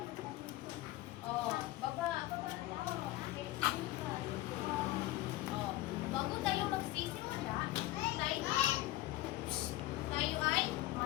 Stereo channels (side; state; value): right; quieter; 16.8 dB